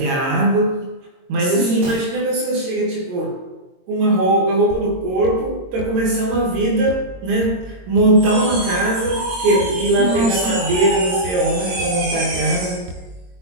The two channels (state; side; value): late; left; 22 ms